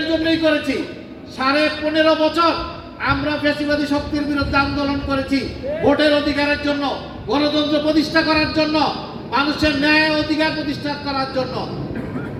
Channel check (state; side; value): identical; both; correlation 1.00